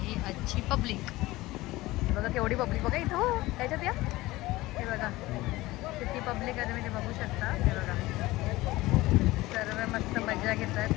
आजची पब्लिक. बघा केवढी पब्लिक बघा इथं. हो त्याच्यात या. हे बघा किती पब्लिक आहे तुम्ही ते बघू शकता. हे बघा सर्व मस्त मजा घेतात.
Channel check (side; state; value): right; quieter; 19.0 dB